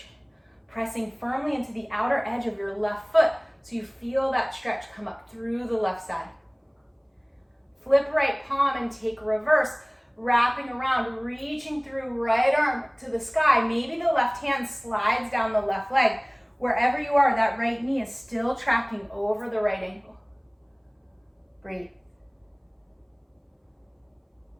pressing firmly into the outer edge of your left foot so you feel that stretch come up through the left side. Flip right palm and take reverse, wrapping around, reaching through right arm to the sky. Maybe the left hand slides down the left leg. Wherever you are, that right knee is still tracking over the right ankle. Breathe.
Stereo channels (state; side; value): identical; both; correlation 1.00